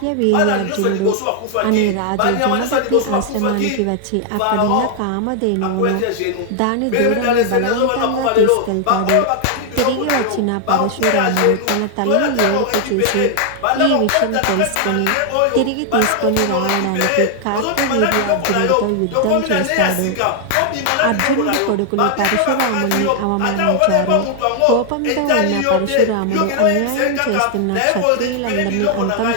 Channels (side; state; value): both; different; correlation 0.00